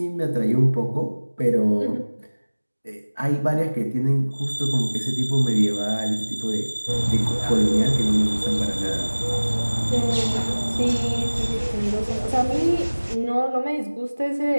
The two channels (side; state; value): both; inverted; correlation -1.00